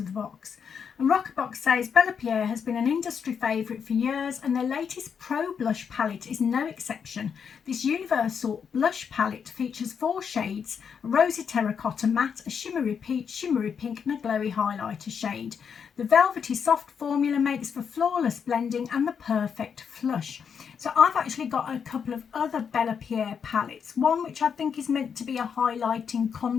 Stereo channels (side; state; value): right; quieter; 6.9 dB